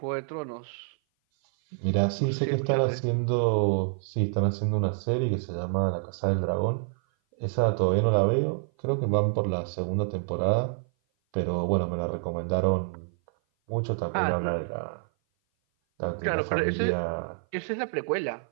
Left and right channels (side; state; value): left; silent; 56 dB below the other